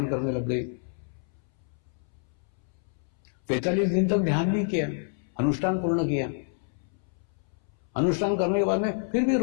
करने लग गई। 45 दिन तक ध्यान भी किया, अनुष्ठान पूर्ण किया। अनुष्ठान करने के बाद में फिर भी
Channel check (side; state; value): right; silent; 59 dB below the other